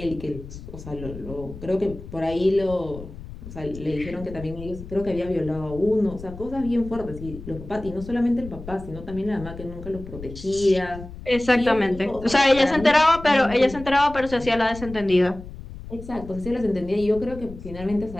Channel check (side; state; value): left; noise; rumble, 13 dB below the sound